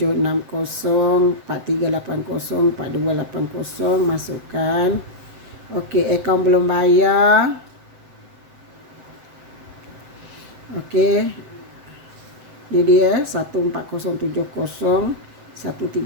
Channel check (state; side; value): late; left; 7.9 ms